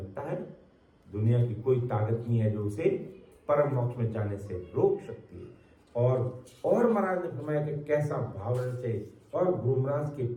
है, दुनिया की कोई ताकत नहीं है जो उसे परम मोक्ष में जाने से रोक सकती है। और महाराज ने फरमाया कि कैसा भाव रहना चाहिए और गुरु महाराज के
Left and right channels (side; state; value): both; identical; correlation 1.00